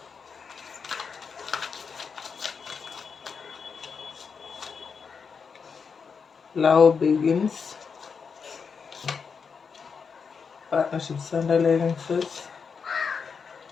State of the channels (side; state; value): right; quieter; 5.8 dB